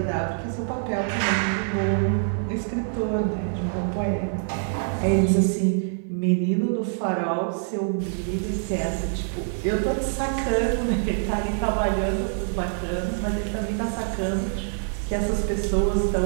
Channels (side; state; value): left; silent; 56 dB below the other